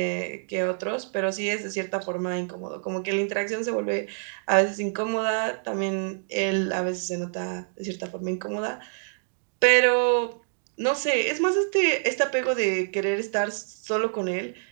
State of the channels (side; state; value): left; silent; digital silence